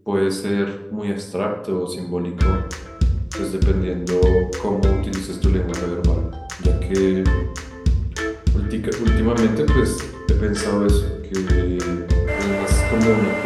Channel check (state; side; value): identical; both; correlation 1.00